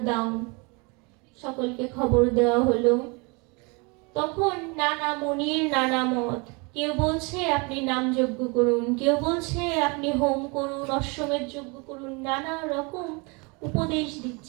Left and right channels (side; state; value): left; quieter; 30.0 dB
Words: দাও। সকলকে খবর দেওয়া হলো। তখন নানা মুনির নানা মত। কেউ বলছে আপনি নাম যজ্ঞ করুন, কেউ বলছে আপনি হোম করুন, অশ্বমেধ যজ্ঞ করুন, নানা রকম উপদেশ